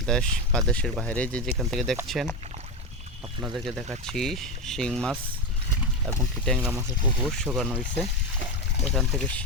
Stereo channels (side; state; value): both; normal; correlation 0.15